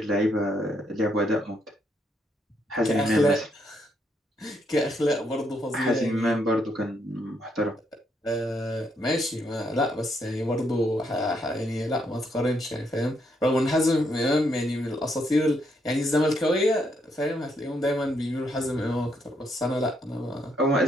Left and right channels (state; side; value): normal; both; correlation 0.75